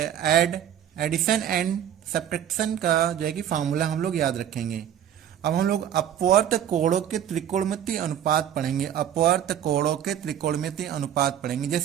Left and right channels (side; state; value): left; quieter; 10.2 dB